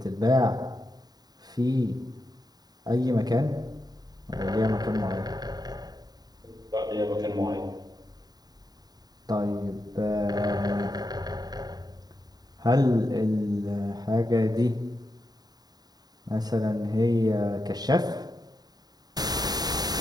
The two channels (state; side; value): late; left; 0.19 ms